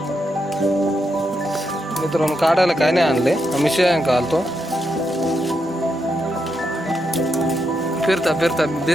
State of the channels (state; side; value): normal; both; correlation 0.82